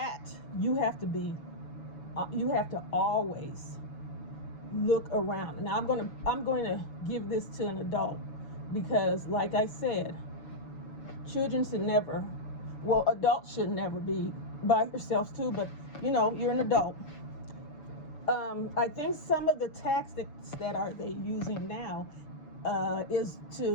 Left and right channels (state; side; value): late; right; 6.9 ms